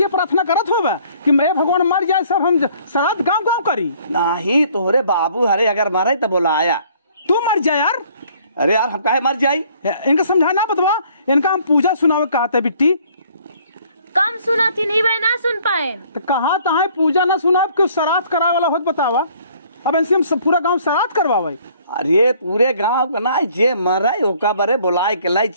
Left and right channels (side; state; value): both; inverted; correlation -0.59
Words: प्रार्थना करत होगा कि मैं भगवान मर जाए सब हम श्राद्ध गाँव गाँव करी। नहीं तोहरे बाबू हरे अगर मारे तो बोलाया तू मर जाए यार। अरे यार हम काहे मर जाई इनका समझाना बतवा इनका हम पूजा सुनावे कहा था बिट्टी कम सुना थी नहीं भाई ना सुन पाए तो कहा है पूजा ना सुना क्यों श्राद्ध करा वाला होत बतावा। अब ऐसे हम सब पूरा गांव श्राद्ध करवावे। अरे पूरे गांव का ना जे मरे ओका बरे बुलाए के लाई